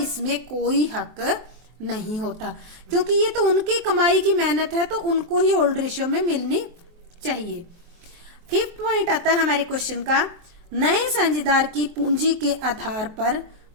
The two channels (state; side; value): late; left; 23 ms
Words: कोई हक नहीं होता, क्योंकि ये तो उनकी कमाई की मेहनत है तो उनको ही ओल्ड रेशियो में मिलनी चाहिए। फिफ्थ पॉइंट आता है हमारे क्वेश्चन का, नए साझेदार की पूंजी के आधार पर